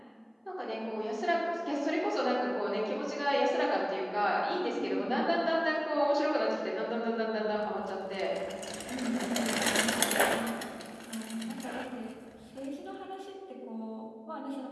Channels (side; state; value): both; identical; correlation 1.00